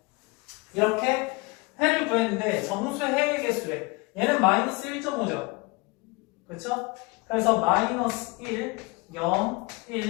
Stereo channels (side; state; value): right; quieter; 26.0 dB